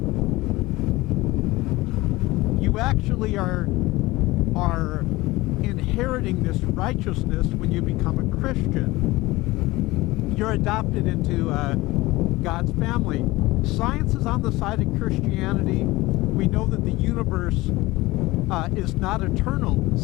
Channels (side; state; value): right; quieter; 20.0 dB